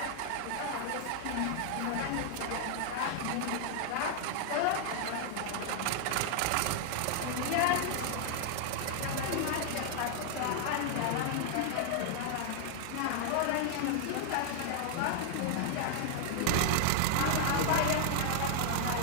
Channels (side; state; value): both; different; correlation 0.00